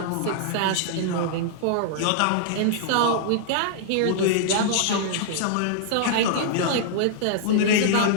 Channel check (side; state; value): both; different; correlation -0.01